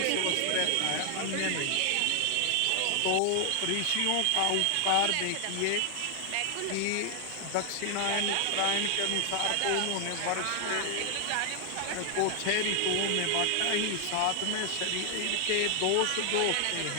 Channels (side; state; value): both; different; correlation 0.00